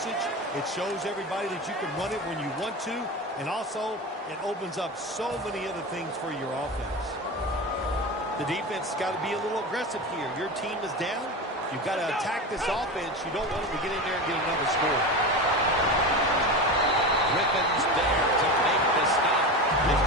It shows everybody that you can run it when you want to, and also it opens up so many other things for your offense. The defense has got to be a little aggressive here. Your team is down. You've got to attack this offense. You don't want them to get in there and get another score. Griffin's there to make the stop. Nice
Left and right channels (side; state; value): both; normal; correlation 0.25